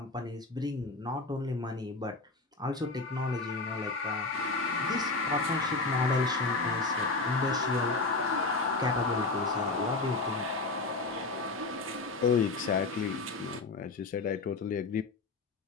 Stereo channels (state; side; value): quieter; right; 3.6 dB